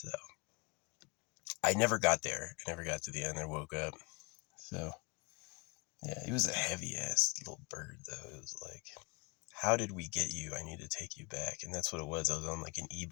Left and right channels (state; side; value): quieter; right; 29.7 dB